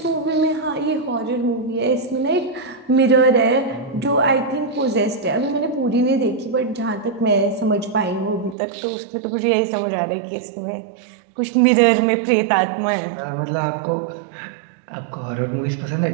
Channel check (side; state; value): left; drops out; at 8.6 s